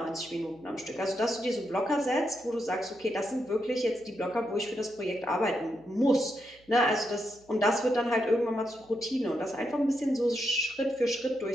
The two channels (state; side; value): noise; right; hum, 29 dB below the sound